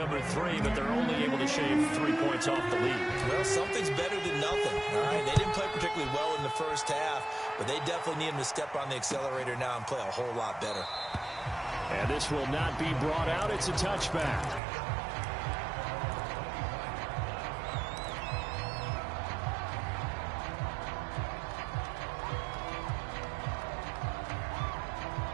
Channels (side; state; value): left; drops out; at 14.6 s